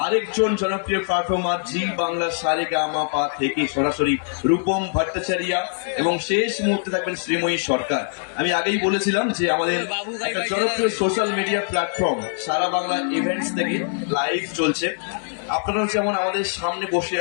আরেকজন জনপ্রিয় পারফর্মার জি বাংলা সারেগামাপা থেকে সরাসরি রূপম ভট্টাচার্য, এবং শেষ মুহূর্তে থাকবেন শ্রীময়ী সরকার। আমি আগেই বলেছিলাম যে আমাদের একটা জনপ্রিয় সোশ্যাল মিডিয়া প্ল্যাটফর্ম সারা বাংলা ইভেন্টস থেকে লাইভ চলছে। আপনারাও যেমন আমাদের সামনে বসে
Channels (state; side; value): silent; right; digital silence